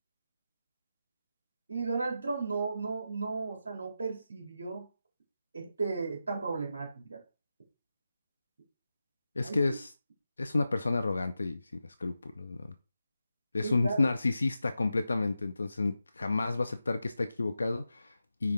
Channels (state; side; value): inverted; both; correlation -0.90